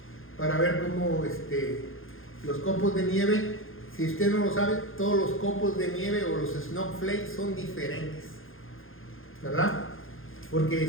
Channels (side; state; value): right; late; 0.60 ms